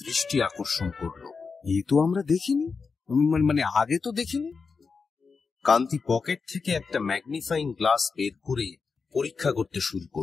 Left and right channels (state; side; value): quieter; right; 5.0 dB